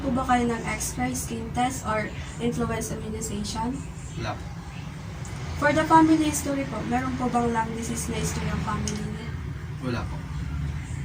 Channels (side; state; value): both; identical; correlation 1.00